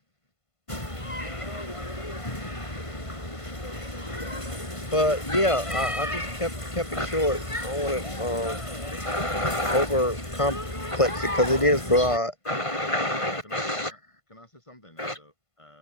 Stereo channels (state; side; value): late; right; 1.5 ms